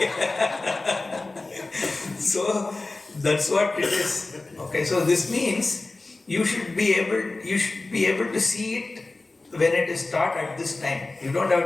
So that's what it is. Okay, so this means you should be able to see it when it is taught at this time. You don't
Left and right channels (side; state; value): right; quieter; 3.3 dB